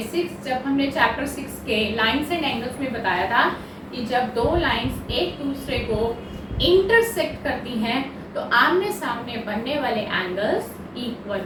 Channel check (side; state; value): both; identical; correlation 1.00